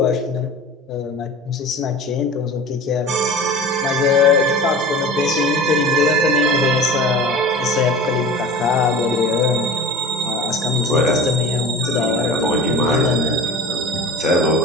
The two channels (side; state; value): both; normal; correlation 0.37